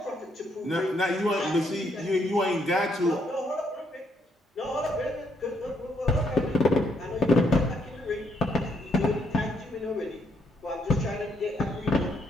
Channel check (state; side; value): normal; both; correlation 0.73